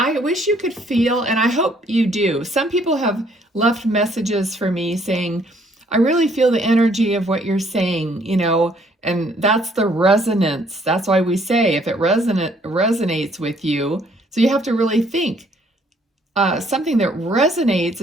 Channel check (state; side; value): normal; both; correlation 0.64